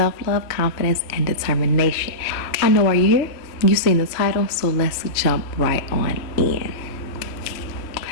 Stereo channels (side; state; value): right; late; 3.0 ms